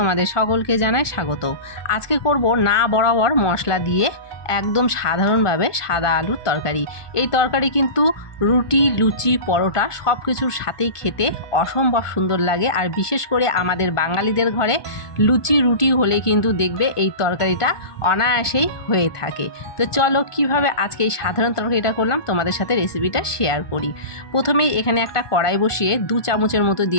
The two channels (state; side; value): late; right; 1.4 ms